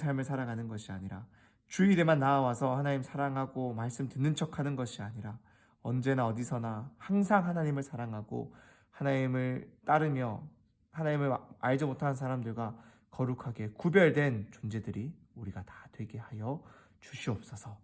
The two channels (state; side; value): identical; both; correlation 1.00